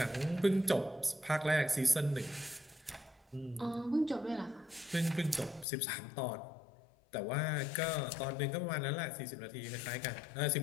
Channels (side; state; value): right; drops out; at 5.7 s